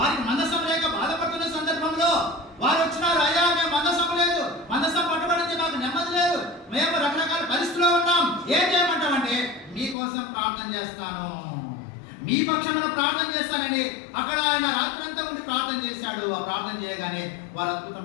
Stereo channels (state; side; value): drops out; right; at 10.0 s